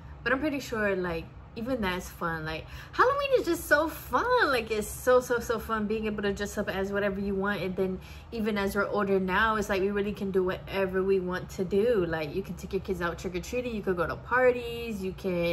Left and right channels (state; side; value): identical; both; correlation 1.00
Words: but I'm pretty sure like even that's fun. Like Halloween is just so fun. Like it's so fun being able to dress up as whatever you want. And then even as we're older now, it's like we really can do whatever we want to do. Like you can take your kids out trick-or-treating, you could go to parties, you